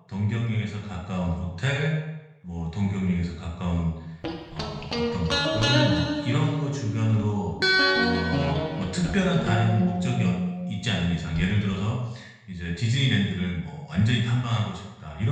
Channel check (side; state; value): both; identical; correlation 1.00